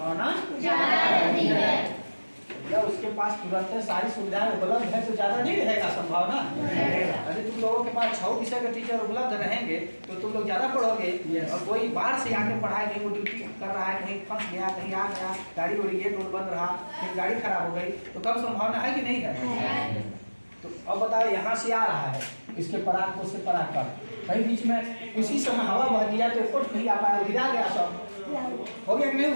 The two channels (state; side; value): inverted; both; correlation -1.00